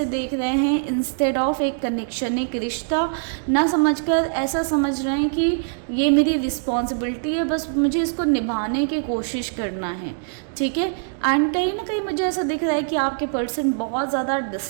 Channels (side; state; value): left; silent; digital silence